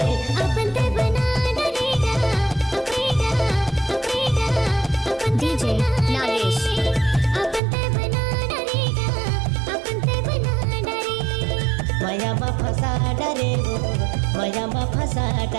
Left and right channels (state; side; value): drops out; left; at 7.6 s